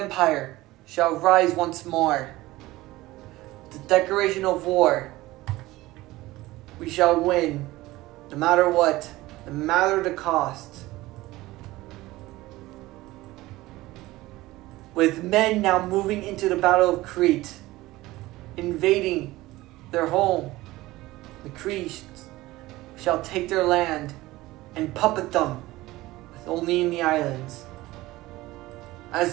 shall rise once more. The declaration of war, we shall win, no matter what, no matter the cost. With men now moving into the Battle of Crete, invading their home, the Cretes shall take their land and puppet them, with only in the islands.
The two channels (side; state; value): left; quieter; 18.3 dB